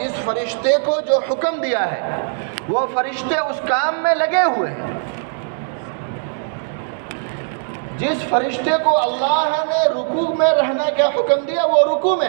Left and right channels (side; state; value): left; silent; digital silence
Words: فرشتے کو جو حکم دیا ہے وہ فرشتے اس کام میں لگے ہوئے ہیں۔ جس فرشتے کو اللہ نے رکوع میں رہنے کا حکم دیا وہ رکوع میں